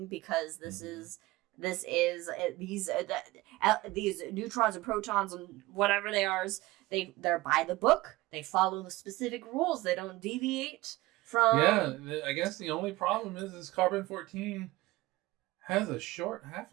because these neutrons and protons and whatever they are, they're by the book. They follow the specific rules. They don't deviate from. Yeah, I guess the only problem is carbon-14 has a short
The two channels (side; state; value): left; quieter; 19.3 dB